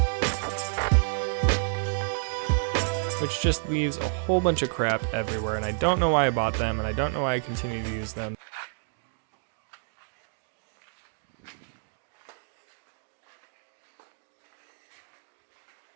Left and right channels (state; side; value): silent; left; digital silence